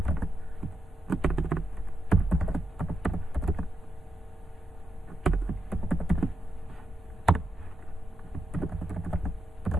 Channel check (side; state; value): both; normal; correlation 0.85